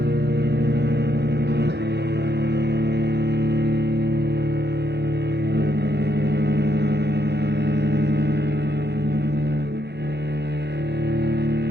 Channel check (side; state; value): left; late; 0.49 ms